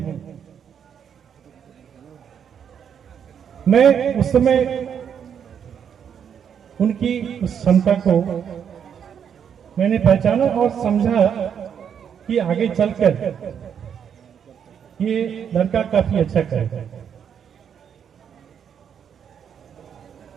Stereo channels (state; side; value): quieter; left; 8.0 dB